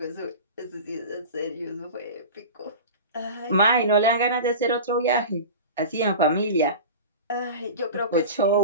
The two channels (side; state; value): both; inverted; correlation -0.32